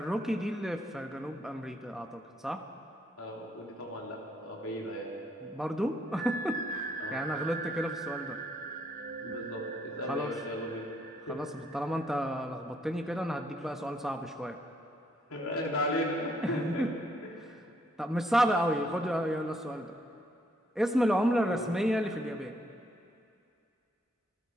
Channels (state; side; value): normal; both; correlation 0.70